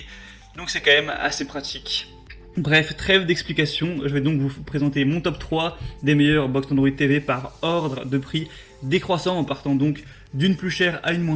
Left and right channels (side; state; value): both; identical; correlation 1.00